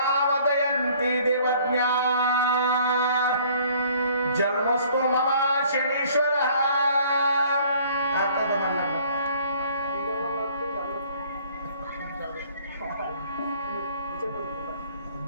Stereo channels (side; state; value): both; inverted; correlation -0.57